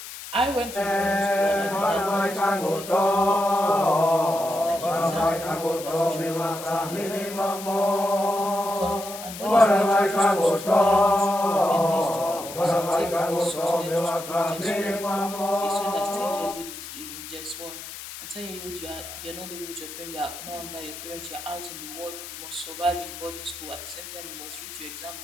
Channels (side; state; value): left; noise; hiss, 11 dB below the sound